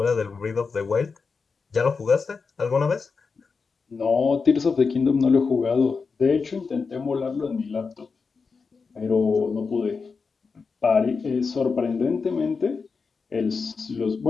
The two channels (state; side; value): quieter; right; 4.9 dB